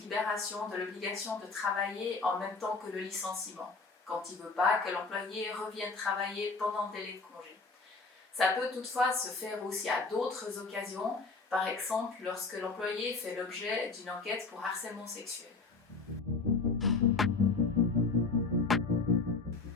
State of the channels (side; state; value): right; quieter; 4.1 dB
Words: de l'obligation de travailler en même temps que le licenciement, quand il ne veut pas que l'employé revienne travailler pendant le délai de congé. Ça peut toutefois se faire aussi à d'autres occasions, par exemple lorsque l'employé fait l'objet d'une enquête pour harcèlement sexuel.